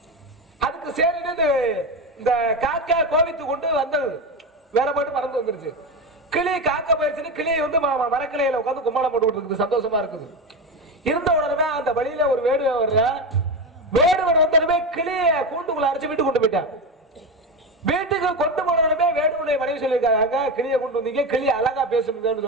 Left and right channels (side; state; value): both; normal; correlation 0.18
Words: அதுக்கு சரி இந்த காக்கா கோவித்து கொண்டு வந்தது, வேற போட்டு பறந்து வந்துருச்சு. கிளி காக்கா போயிருச்சுன்னு கிளியை வந்து மரக்கிளையில உட்காந்து கும்மாளம் போட்டு இருக்குது, சந்தோஷமா இருக்குது. இருந்த உடனே அந்த வழியில ஒரு வேடுவன் வர்ற, வேடுவன் வந்தனமே கிளிய கூண்டுக்குள்ள அரைச்சு வீட்டுக்கு கொண்டு போயிட்டான். வீட்டுக்கு கொண்டு போனதுமே வேடுவனுடைய மனைவி சொல்லியிருக்காங்க, கிளியை கொண்டு வந்தீங்க, கிளி அழகா பேசணுங்கன்னு